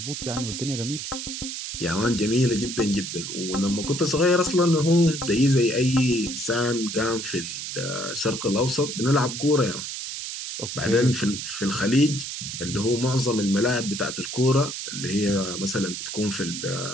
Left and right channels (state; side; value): noise; right; hiss, 6 dB below the sound